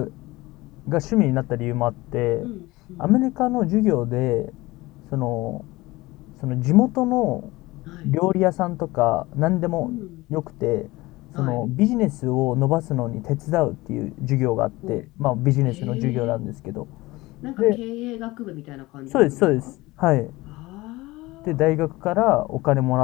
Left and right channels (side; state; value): right; quieter; 20.3 dB